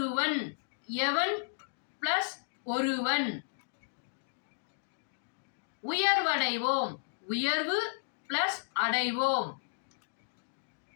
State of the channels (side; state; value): right; silent; digital silence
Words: எவன் பிளஸ் ஒருவன். உயர்வடைவோம் உயர்வு பிளஸ் அடைவோம்.